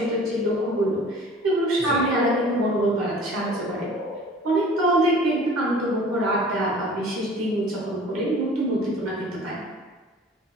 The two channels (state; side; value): normal; both; correlation 0.46